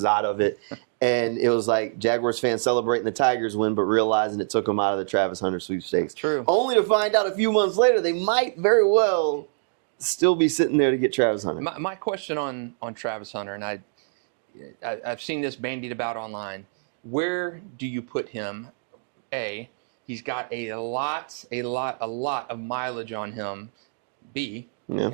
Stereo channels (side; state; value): left; silent; digital silence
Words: out of it. And it was like Jaguars fans celebrating the Tigers win, but realizing it took them out of the Travis Hunter sweepstakes. True. Only to find out a few months later they might very well still be sitting there to get Travis Hunter. My question on Travis Hunter, and I've seen this bandied about online. Where do you put him? A, he's got a lot of mileage on him. B,